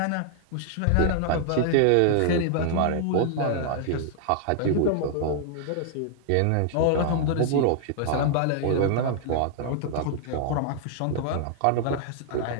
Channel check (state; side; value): different; both; correlation -0.01